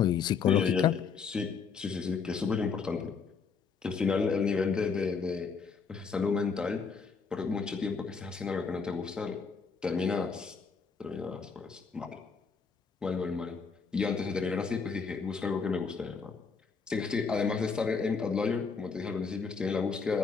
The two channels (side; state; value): right; quieter; 5.5 dB